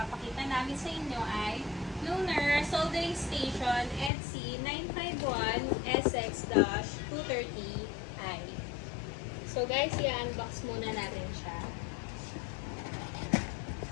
namin sa inyo ay Lunar Soldering Station EDSI 951SX-230i. So guys, i-unbox muna natin siya.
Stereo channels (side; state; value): right; drops out; at 4.1 s